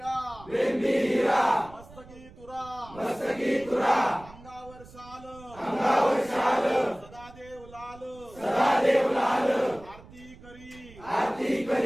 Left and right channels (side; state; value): right; noise; rumble, 21 dB below the sound